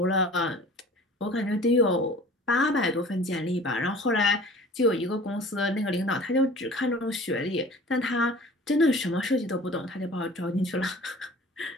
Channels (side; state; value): both; normal; correlation 0.44